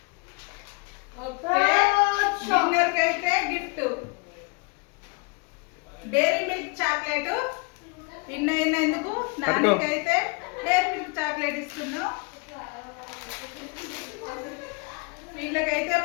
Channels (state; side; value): quieter; right; 30.4 dB